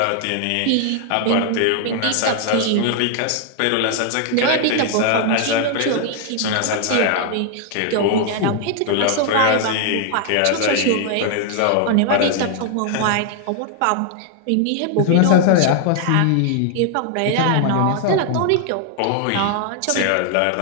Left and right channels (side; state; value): both; different; correlation 0.00